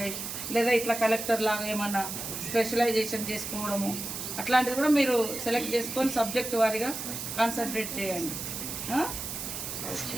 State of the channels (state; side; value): noise; right; hiss, 6 dB below the sound